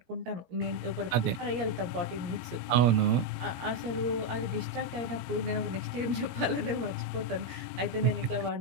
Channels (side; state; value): left; late; 17 ms